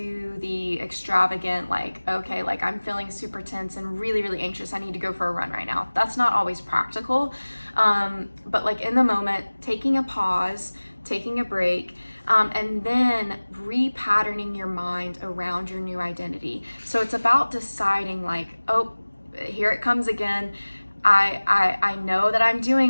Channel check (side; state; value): both; inverted; correlation -1.00